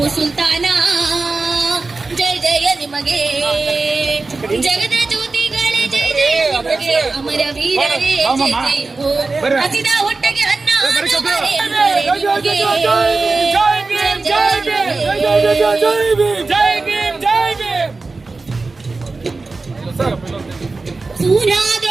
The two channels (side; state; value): left; quieter; 3.7 dB